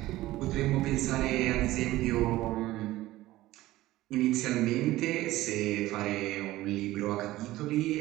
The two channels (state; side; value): quieter; left; 16.7 dB